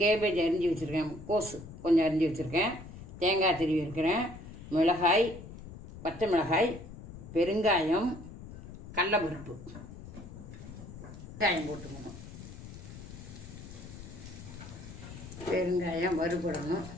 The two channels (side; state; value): left; noise; rumble, 13 dB below the sound